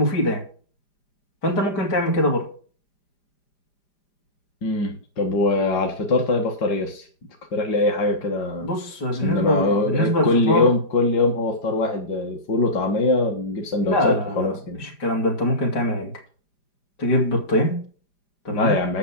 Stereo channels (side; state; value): right; late; 4.9 ms